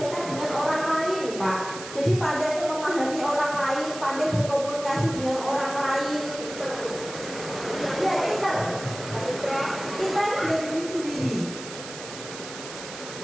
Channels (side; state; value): right; noise; hiss, 11 dB below the sound